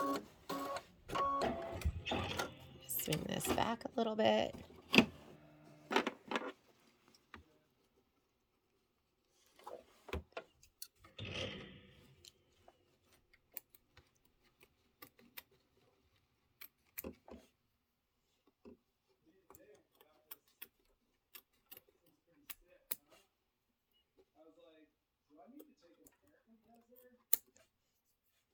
Swing this back a little bit.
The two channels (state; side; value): identical; both; correlation 1.00